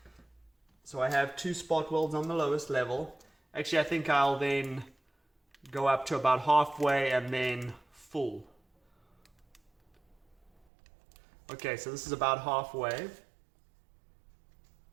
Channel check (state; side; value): drops out; left; at 10.5 s